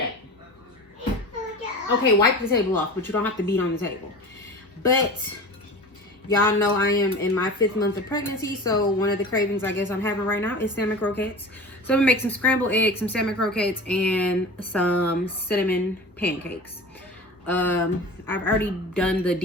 Okay, wipe the table off, but you don't have to beat on the table. But y'all know I am in my 5th month of pregnancy, so one of the cravings I guess I'm having right now is salmon croquettes. So I'm gonna make some scrambled eggs, some salmon croquettes, and some cinnamon pancakes. I've already done the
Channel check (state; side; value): normal; both; correlation 0.35